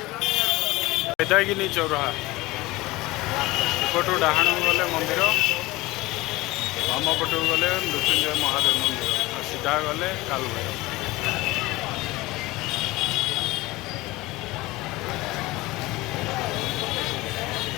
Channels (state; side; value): quieter; right; 20.2 dB